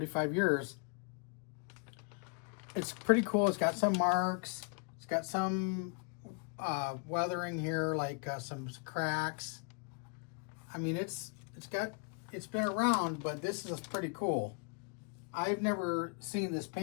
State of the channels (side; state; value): right; quieter; 37.8 dB